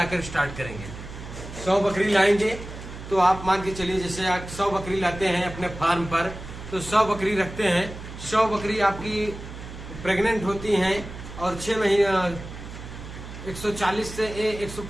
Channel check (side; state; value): right; noise; hum, 12 dB below the sound